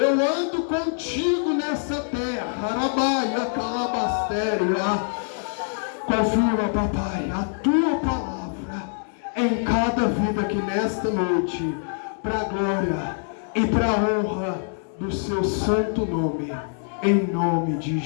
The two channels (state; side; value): silent; right; 62 dB below the other